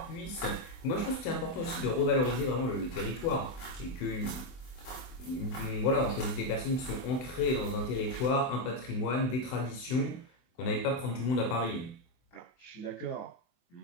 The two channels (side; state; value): right; late; 24 ms